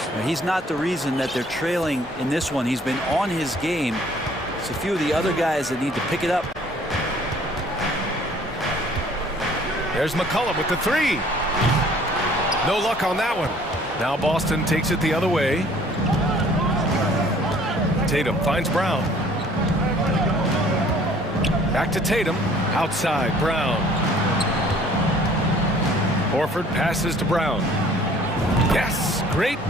Now, he's not the reason that they're trailing in this one. He's been on his game. It's a few of the other guys that need to pick it up. There's McCollum with the three. No luck on that one. Now Boston takes it the other way. Tatum finds Brown. Back to Tatum. Outside, Brown. Horford passes to Brown. Yes, great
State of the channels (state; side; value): normal; both; correlation 0.55